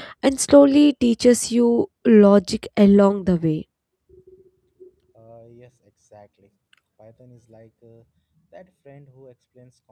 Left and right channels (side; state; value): both; identical; correlation 1.00